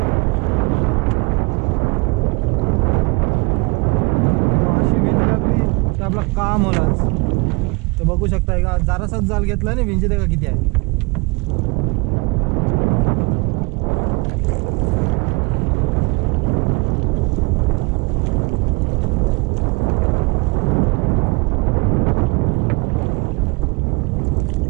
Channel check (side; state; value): left; quieter; 27.8 dB